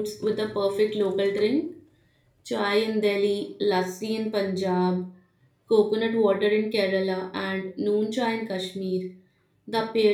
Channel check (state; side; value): identical; both; correlation 1.00